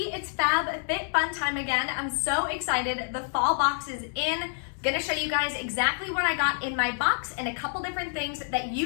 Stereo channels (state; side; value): silent; right; 60 dB below the other